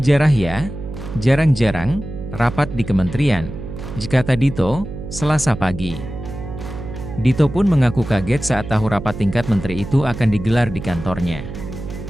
ya, jarang-jarang, rapat di kementerian, kata Dito, Selasa pagi. Dito pun mengaku kaget saat tahu rapat tingkat menteri itu akan digelar di kantornya.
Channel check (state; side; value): noise; right; hum, 10 dB below the sound